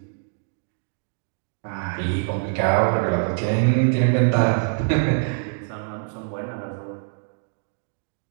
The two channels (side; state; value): left; silent; 62 dB below the other